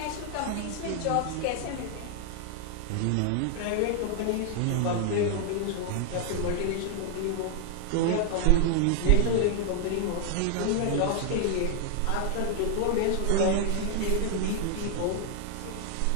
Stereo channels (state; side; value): different; both; correlation 0.00